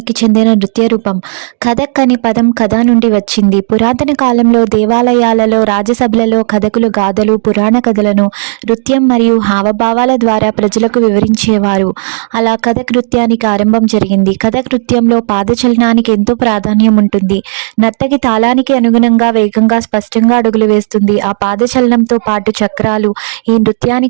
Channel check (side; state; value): left; silent; digital silence